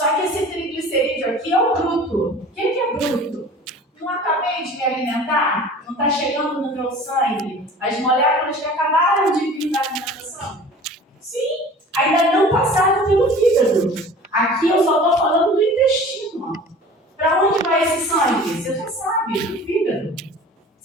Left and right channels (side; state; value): both; normal; correlation 0.43